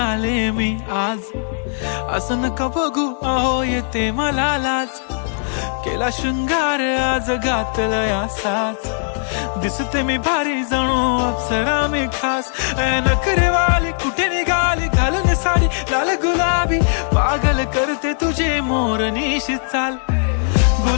मी आज, असं नका बघू अहो येते मला लाज. केला शृंगार आज घातला साज, दिसते मी भारी जणू अप्सरा मी खास. नखरेवाली कुठे निघाली घालून साडी लाल गुलाबी, पागल करते तुझे मोरनीशी चाल.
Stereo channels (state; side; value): silent; right; digital silence